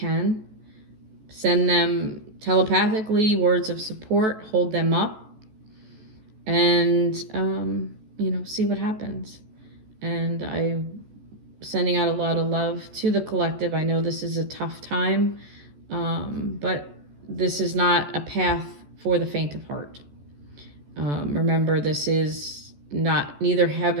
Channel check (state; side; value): late; left; 14 ms